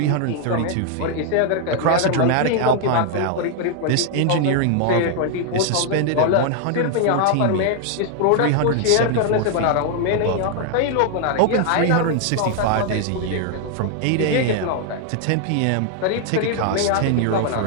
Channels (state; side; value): different; both; correlation 0.00